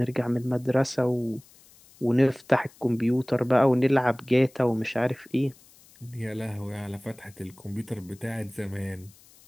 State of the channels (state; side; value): noise; left; hiss, 26 dB below the sound